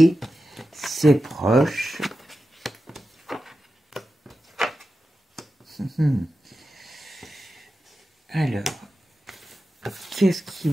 C'est proche. Alors, qu'est-ce qu'ils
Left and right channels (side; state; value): both; normal; correlation 0.92